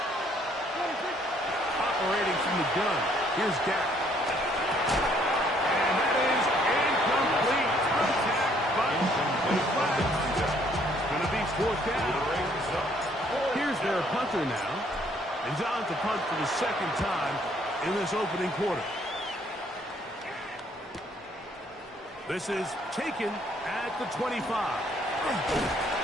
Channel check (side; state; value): both; normal; correlation 0.65